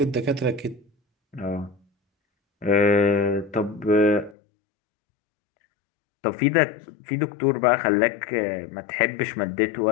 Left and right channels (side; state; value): right; drops out; at 4.4 s